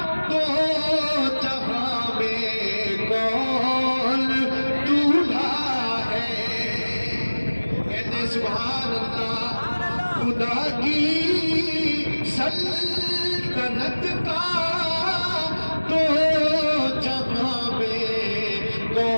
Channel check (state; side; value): inverted; both; correlation -1.00